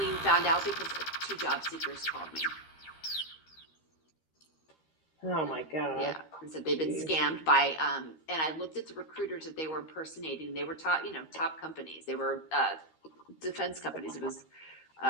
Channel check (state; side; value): late; right; 13 ms